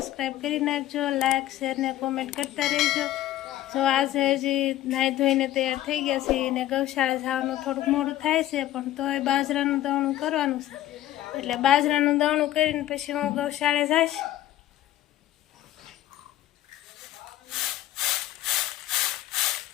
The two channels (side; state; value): right; quieter; 13.9 dB